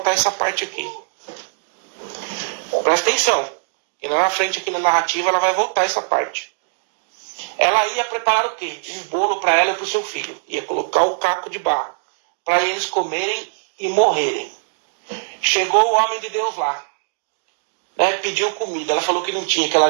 essa parte aqui. Presta atenção. E lá na frente, aqui na narrativa, ela vai voltar essa parte. Ela ia preparar o quê? Um bolo para ela e para o seu filho. Ia colocar o caco de barro. Para eles comerem e morrerem. Chegou o homem de Deus lá. Pediu comida. Ela falou que não tinha, que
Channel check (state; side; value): silent; left; digital silence